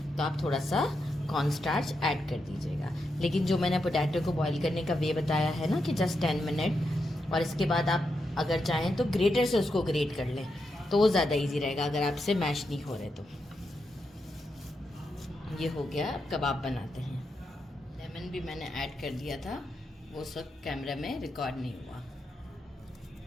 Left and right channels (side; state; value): both; normal; correlation 0.85